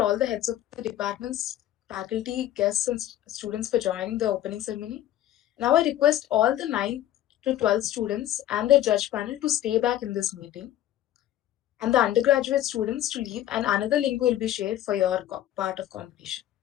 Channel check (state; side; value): quieter; right; 12.8 dB